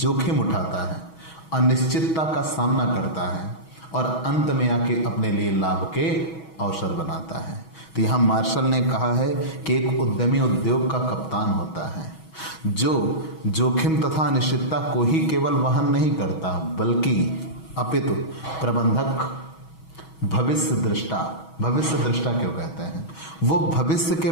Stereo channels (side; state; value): right; late; 6.2 ms